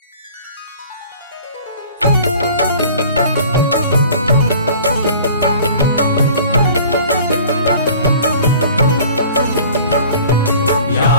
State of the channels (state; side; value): inverted; both; correlation -0.47